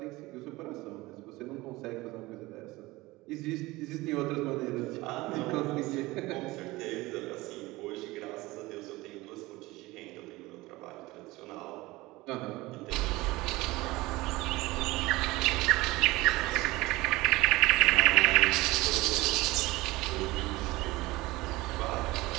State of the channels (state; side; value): quieter; left; 20.3 dB